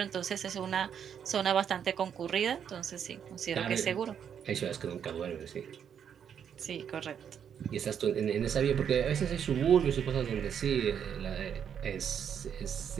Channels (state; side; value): quieter; left; 8.2 dB